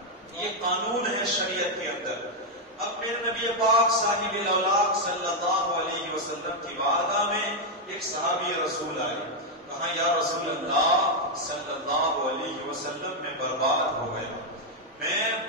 یہ قانون ہے شریعت کے اندر. اب میرے نبی پاک صاحب الاولاق صلی اللہ علیہ وسلم کی بارگاہ میں ایک صحابی رسول آئے. کہا یا رسول اللہ صلی اللہ علیہ وسلم میں برباد ہو گیا. میں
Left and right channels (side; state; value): both; normal; correlation 0.01